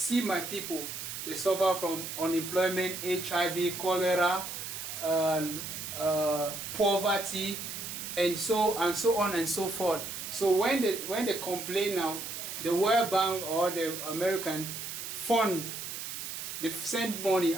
my people, they suffer from unemployment, HIV, cholera, poverty, and so on and so forth. So when they complain now, the World Bank or the American fund, they send money,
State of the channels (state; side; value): noise; right; hiss, 7 dB below the sound